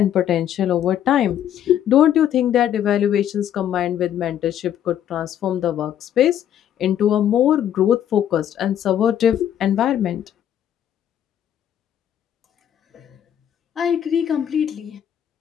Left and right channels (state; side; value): quieter; right; 10.3 dB